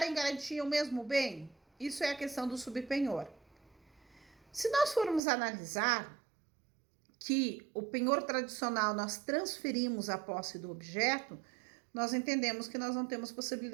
em garantia o mesmo bem? Isso é a questão do subpenhor. Se nós formos analisar que o penhor tradicional nós transferimos a posse do objeto, nós entendemos que nós não temos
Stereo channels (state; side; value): drops out; left; at 5.2 s